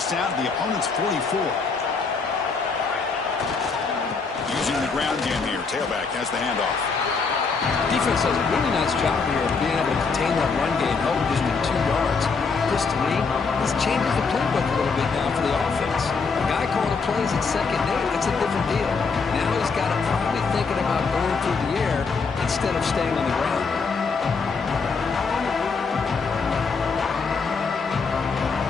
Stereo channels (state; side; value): quieter; right; 4.8 dB